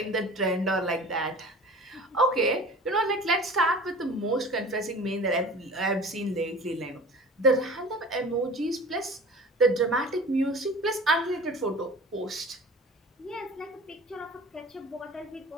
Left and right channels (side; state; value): both; normal; correlation 0.41